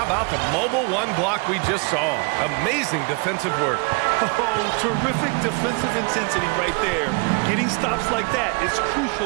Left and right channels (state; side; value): quieter; left; 32.8 dB